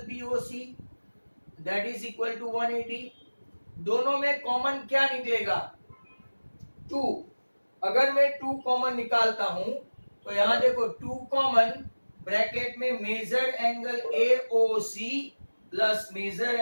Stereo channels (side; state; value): both; inverted; correlation -1.00